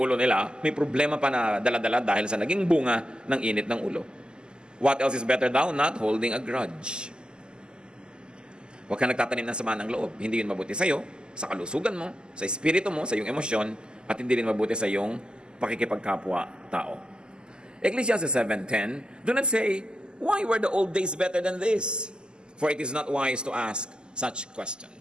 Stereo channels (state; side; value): late; left; 0.047 ms